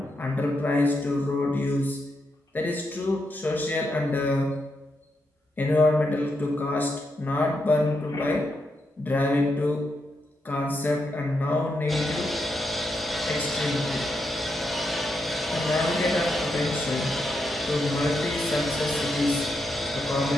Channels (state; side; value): normal; both; correlation 0.83